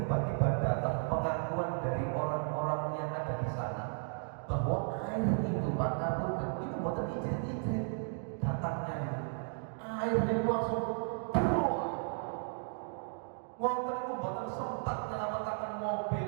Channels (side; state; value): left; silent; 55 dB below the other